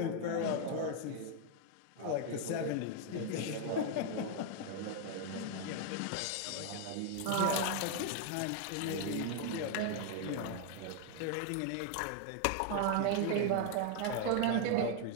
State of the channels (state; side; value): different; both; correlation 0.01